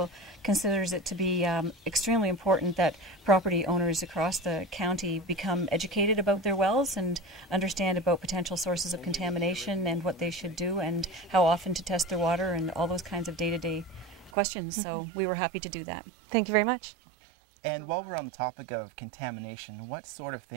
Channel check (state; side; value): drops out; left; at 14.3 s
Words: considers it to be extremely important that property owners across the county become educated about their wells and understand about potential sources of contamination and what they should do and how often to test their water and all those kinds of day-to-day questions. So we were happy to do that. Thank you very much. And while we're on the topic of contamination, what sort of